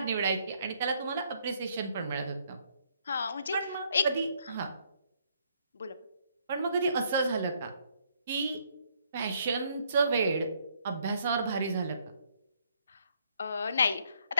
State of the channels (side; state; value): both; inverted; correlation -0.69